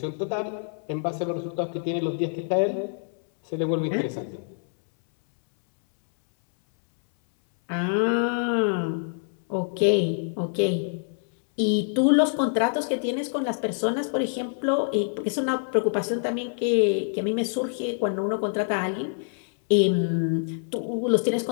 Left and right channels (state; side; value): silent; right; 61 dB below the other